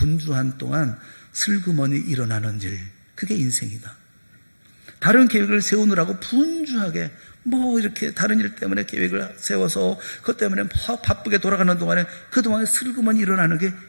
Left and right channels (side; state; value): both; inverted; correlation -1.00